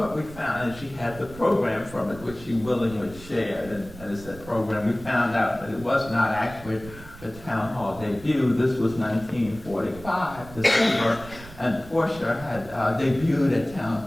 we found, and she had the program from it, which she willingly shared, and it's that program, we found out that it was not actually the town hall debut. This was 1945, December, and Portia had debuted at town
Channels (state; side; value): noise; right; rumble, 17 dB below the sound